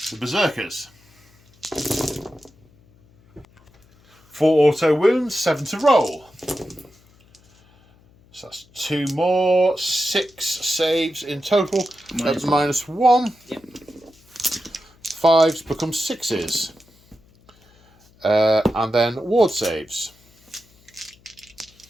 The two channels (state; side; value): noise; left; hum, 30 dB below the sound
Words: Berserkers. 4 auto wounds, 7 to roll. So that's 2 more, 6 saves in total. That's -1. Yep. 5s become 6s. And then ward saves.